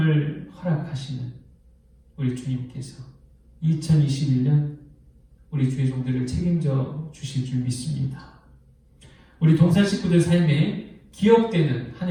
허락하시는 우리 주님께서 2021년 우리 주의 종들을 책임져 주실 줄 믿습니다. 우리 동산 식구들 삶에 기억되는 한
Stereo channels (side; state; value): both; identical; correlation 1.00